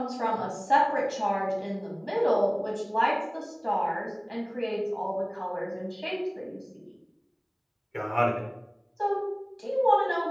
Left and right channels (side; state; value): both; identical; correlation 1.00